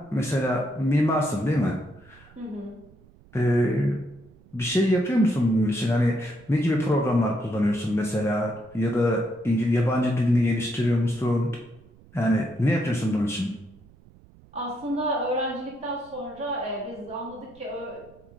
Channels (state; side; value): noise; right; rumble, 26 dB below the sound